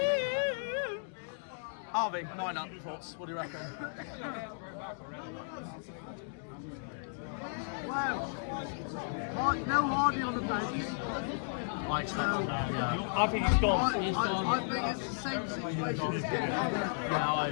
Harvey, line up thoughts. What do you reckon? Well, no Hardy on the bench. I expect I think he's gone. I think it's the same situation as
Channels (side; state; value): right; silent; digital silence